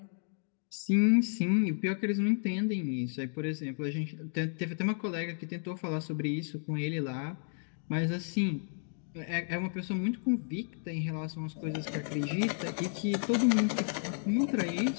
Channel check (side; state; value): right; silent; 56 dB below the other